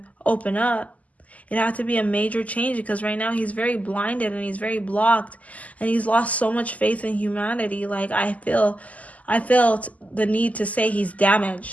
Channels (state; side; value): late; right; 0.073 ms